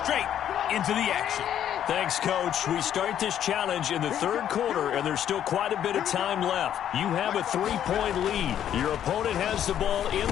into the action. Thanks, Coach. We start this challenge in the third quarter, and there's still quite a bit of time left. You have a 3-point lead. Your opponent has the ball in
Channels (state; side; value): quieter; right; 10.3 dB